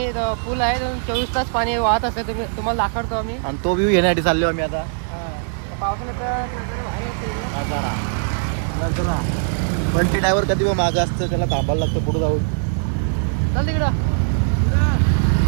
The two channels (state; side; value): silent; left; digital silence